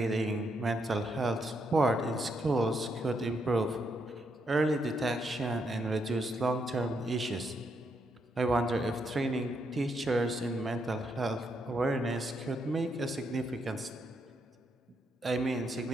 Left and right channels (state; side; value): normal; both; correlation 0.78